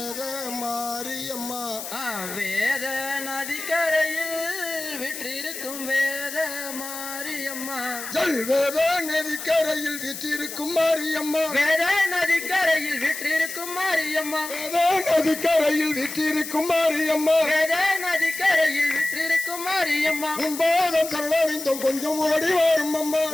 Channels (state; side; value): noise; left; hiss, 9 dB below the sound